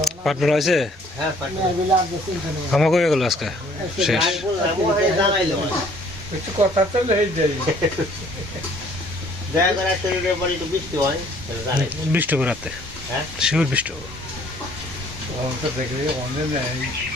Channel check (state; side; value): normal; both; correlation 0.59